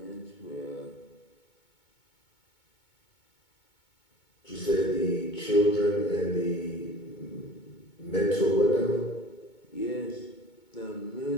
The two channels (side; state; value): right; late; 2.2 ms